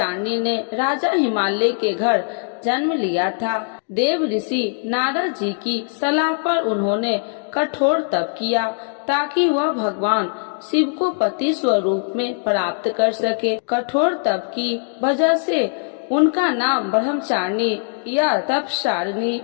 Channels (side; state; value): right; silent; 58 dB below the other